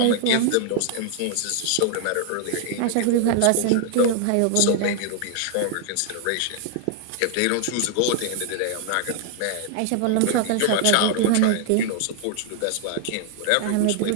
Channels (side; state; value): both; different; correlation 0.00